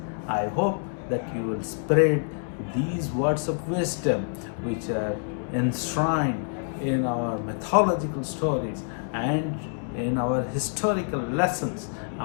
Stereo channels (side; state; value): right; silent; 60 dB below the other